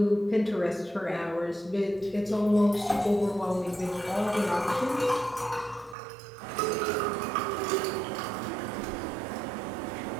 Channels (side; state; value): left; drops out; at 6.0 s